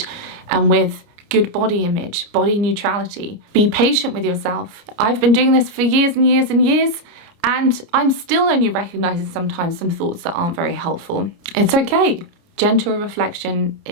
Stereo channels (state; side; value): late; left; 29 ms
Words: and with good body image, body neutrality. Be patient with yourself. I've been doing this for years and years and years, and I'm still only recognizing sometimes some thoughts that aren't very helpful. It's okay. Gentle reflection